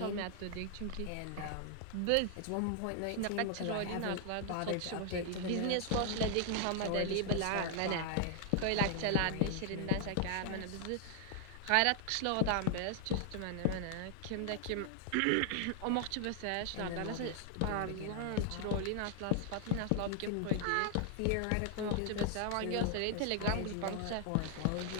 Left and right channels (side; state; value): both; different; correlation 0.00